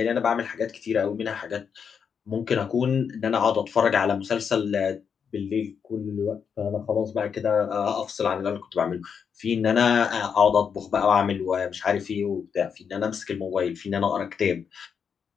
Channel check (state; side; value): quieter; right; 6.8 dB